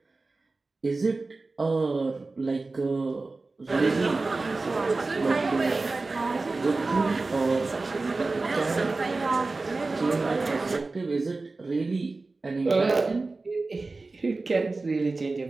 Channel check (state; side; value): quieter; left; 3.5 dB